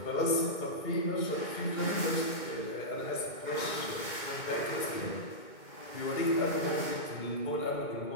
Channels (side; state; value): right; late; 2.2 ms